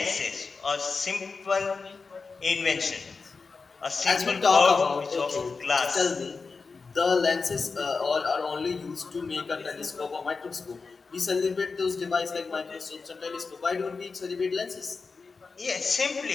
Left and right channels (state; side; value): quieter; right; 4.5 dB